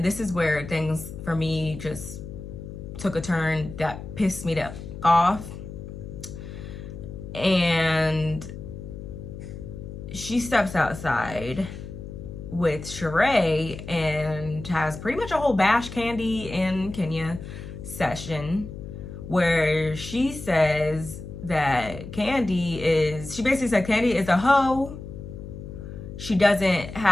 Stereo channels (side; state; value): left; noise; hum, 11 dB below the sound